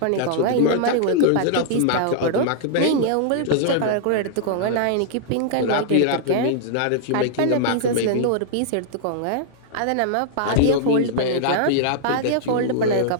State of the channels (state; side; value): different; both; correlation -0.01